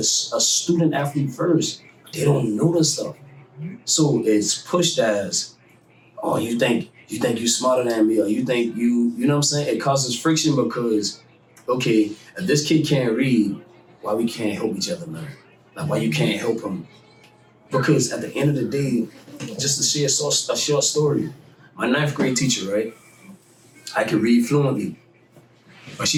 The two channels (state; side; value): identical; both; correlation 1.00